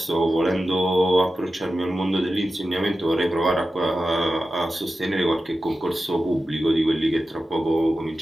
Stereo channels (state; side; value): normal; both; correlation 0.93